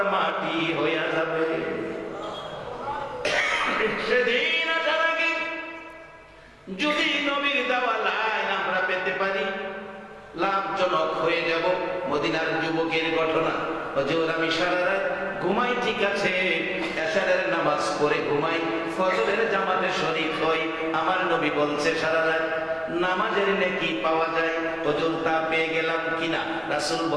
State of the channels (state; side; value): identical; both; correlation 1.00